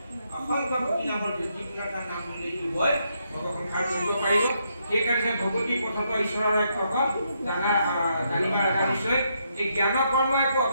অসংখ্য কোটি নামৰ যিকোনো এটা নাম বুলি দিবই ভগৱন্তৰ কৰিব পাৰিব সেইকাৰণে ভগৱতী পথত ঈশ্বৰৰ এক ভকত জানিবা লগা নিশ্চয় এই জ্ঞান কৰ্ম একো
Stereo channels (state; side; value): inverted; both; correlation -0.77